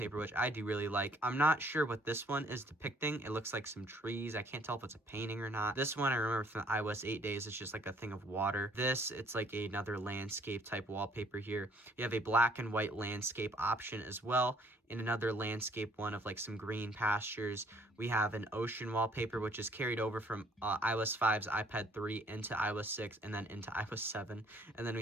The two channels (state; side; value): normal; both; correlation 0.62